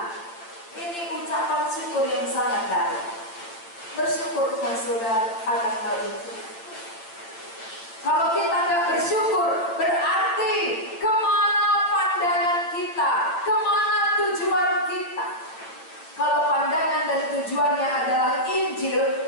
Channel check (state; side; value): late; right; 8.8 ms